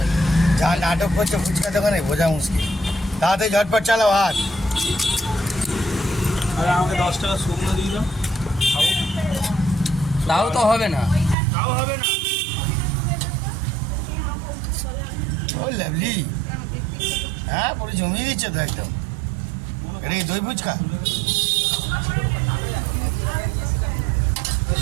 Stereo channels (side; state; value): left; drops out; at 11.4 s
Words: যা নাটক করছে ফুচকা দোকানে বোঝা মুশকিল। তাড়াতাড়ি ঝটপট চালাও হাত। আরে আমাকে 10 টাকা শুকনো দিয়ে দাও, খাবো। তাও তো হবে না। তাও হবে না। ও লাভলি, হ্যাঁ পুরো জমিয়ে দিচ্ছে তো একদম। এটা কি দই ফুচকা?